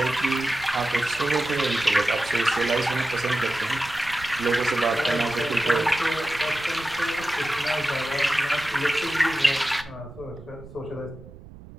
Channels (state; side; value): noise; right; rumble, 18 dB below the sound